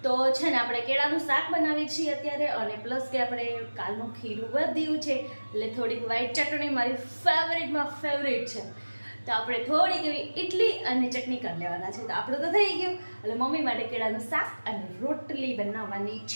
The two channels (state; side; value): inverted; both; correlation -1.00